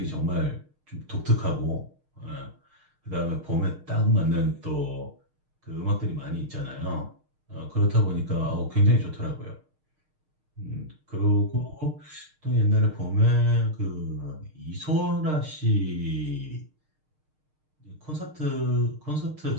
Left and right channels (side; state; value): left; late; 6.5 ms